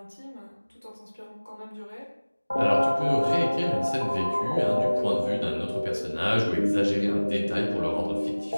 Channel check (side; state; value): both; inverted; correlation -1.00